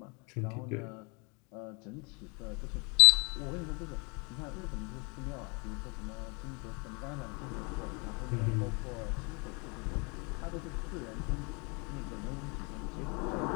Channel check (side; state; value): right; quieter; 31.9 dB